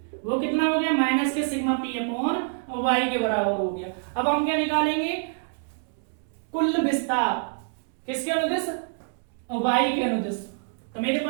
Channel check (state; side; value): silent; left; digital silence